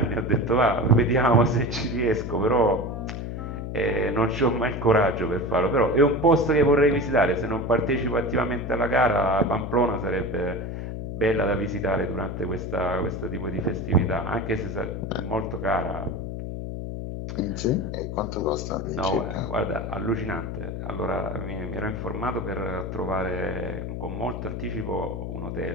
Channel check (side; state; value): left; noise; hum, 6 dB below the sound